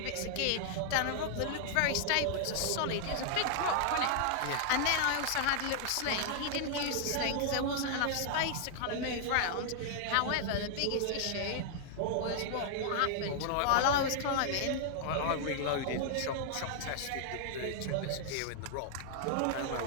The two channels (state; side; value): different; both; correlation 0.00